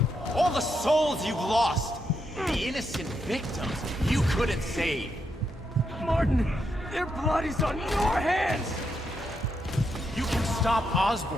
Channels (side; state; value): both; normal; correlation 0.81